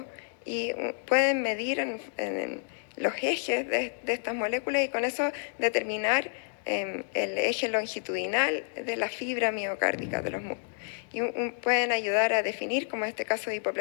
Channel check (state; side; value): silent; right; digital silence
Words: y pueden medir en los ejes de estas moléculas y con eso determinar el eje longitudinal de la fibra miocárdica de los músculos. Y pueden ayudar a definir, como en este caso de